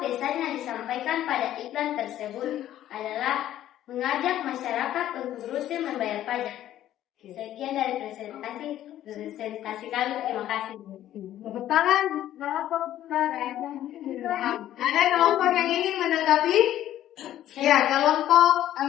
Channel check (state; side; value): quieter; right; 12.5 dB